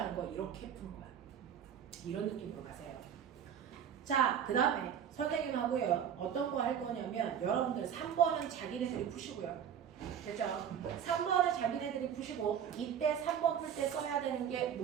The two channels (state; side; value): quieter; left; 8.6 dB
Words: 거 이렇게 푼 거야. 이런 느낌으로 가세요. 자, 그 다음에 선생님하고요. 어떤 거 할 거냐면 여러분들 3번은 자기네들이 푸시고요. 됐죠? 3번을 자기네들이 푸시고 이때 3번 풀 때 써야 되는 게